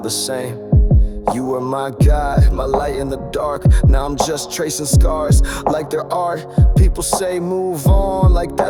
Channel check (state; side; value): identical; both; correlation 1.00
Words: same. You were my guide, my light in the dark. Now I'm just tracing scars like they're art. People say move on like